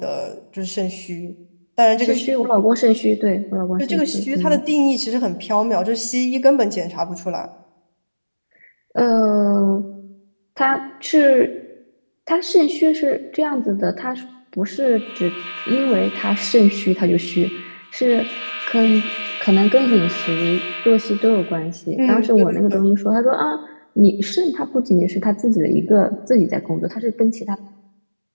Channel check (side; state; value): both; inverted; correlation -1.00